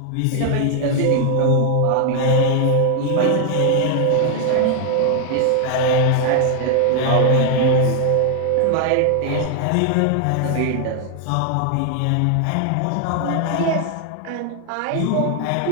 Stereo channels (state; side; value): different; both; correlation 0.00